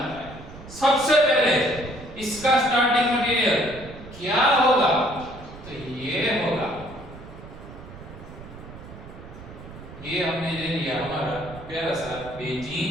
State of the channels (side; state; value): right; noise; rumble, 15 dB below the sound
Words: है। सबसे पहले इसका स्टार्टिंग मटेरियल क्या होगा? तो ये होगा, ये हमने ले लिया हमारा प्यारा सा